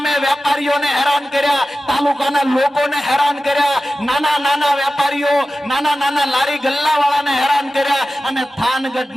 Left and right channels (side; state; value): both; normal; correlation 0.94